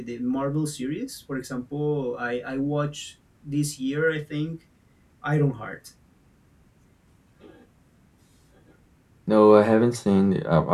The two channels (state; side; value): identical; both; correlation 1.00